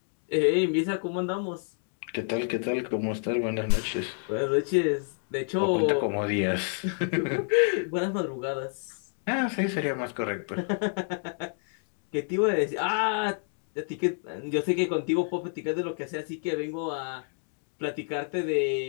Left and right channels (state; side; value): silent; right; 59 dB below the other